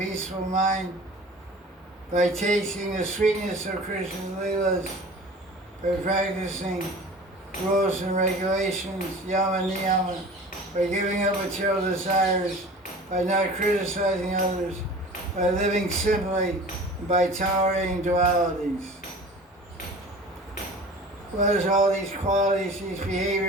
mind, by tasting the sweetness of Krishna's Leelas, by practicing rules and regulations, yama niyama, by giving up material desires, by not criticizing others, by living simply, and by tolerating dualities. What is all these qualities, these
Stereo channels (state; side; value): normal; both; correlation 0.41